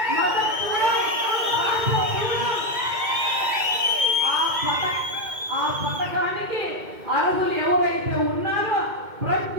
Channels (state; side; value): late; left; 2.2 ms